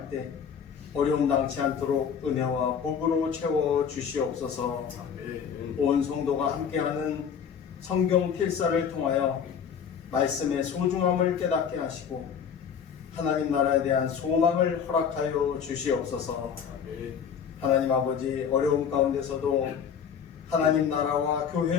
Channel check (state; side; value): quieter; right; 7.4 dB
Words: 때 어려움 당치 않도록 은혜와 복으로 채워 주시옵소서. 온 성도가 함께하는 성경 필사를 통하여 말씀의 소중함을 깨닫게 하시고 하나님 나라에 대한 소망을 허락하여 주시옵소서. 하나님 아버지, 어려움 가운데서도 하나님 나라와